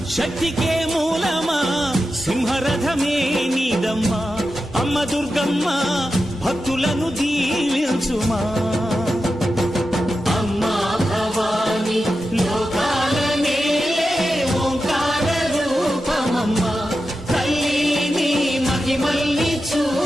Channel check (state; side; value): normal; both; correlation 0.91